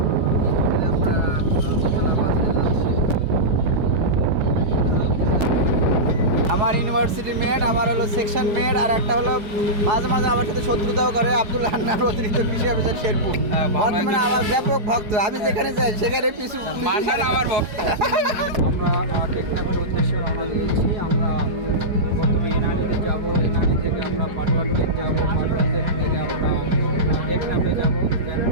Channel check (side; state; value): left; late; 4.8 ms